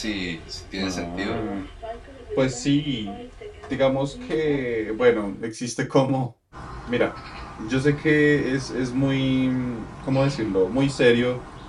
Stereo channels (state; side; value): identical; both; correlation 1.00